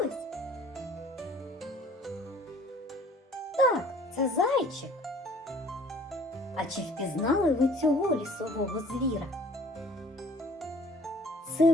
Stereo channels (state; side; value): normal; both; correlation 0.53